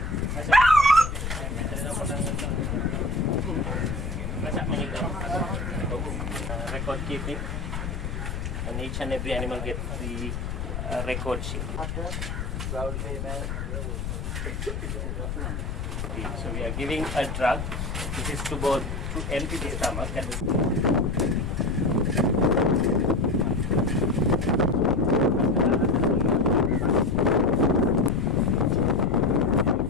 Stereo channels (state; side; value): noise; left; rumble, 4 dB below the sound